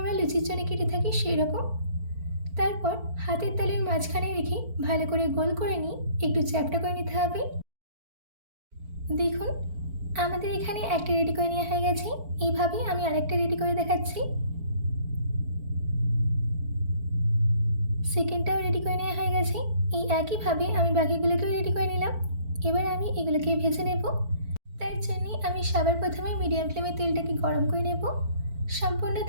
লুচির জন্য কেটে থাকি সেই রকম। তারপর হাতের তালুর মাঝখানে রেখে ভালো করে গোল করে নিয়ে একটু চ্যাপ্টা করে নিতে হবে। দেখুন, আমাদের এখানে একটা রেডি করে নেওয়া হয়ে গেছে। এইভাবেই আমি আরেকটা রেডি করে দেখাচ্ছি। সেকেন্ডটাও রেডি করে নেওয়া হয়ে গেছে। এই একইভাবে আমি বাকিগুলোকেও রেডি করে নিলাম। এবার আমি এগুলোকে ভেজে নেব। তার জন্যে আমি সবার প্রথমে মিডিয়াম ফ্লেমে তেলটাকে গরম করে নেব। সম্পূর্ণ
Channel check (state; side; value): late; left; 4.5 ms